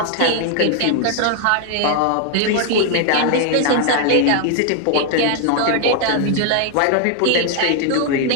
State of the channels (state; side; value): different; both; correlation 0.00